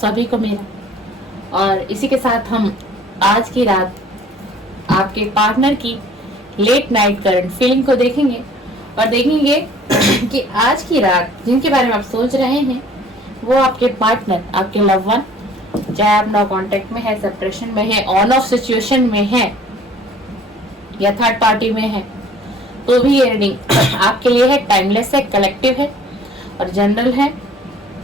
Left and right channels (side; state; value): both; normal; correlation 0.53